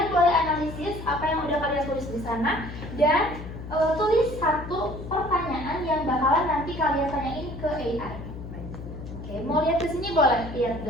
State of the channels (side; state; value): left; noise; hum, 10 dB below the sound